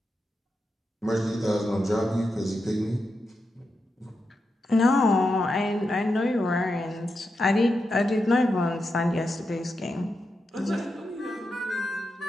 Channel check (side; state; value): both; normal; correlation 0.87